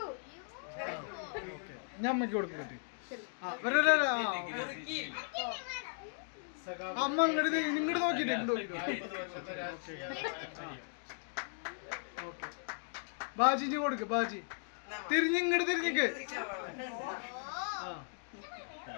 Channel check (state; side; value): silent; right; digital silence